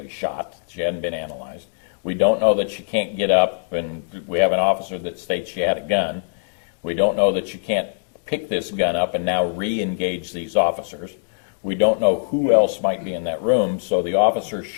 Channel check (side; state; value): right; silent; digital silence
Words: shot. She hadn't been analyzed. We don't know that she can't get up, and we have an officer that states she had a gun. We don't know that she can't pick this gun up and now re-engage these officers. We don't know who else might be in that room, so the officer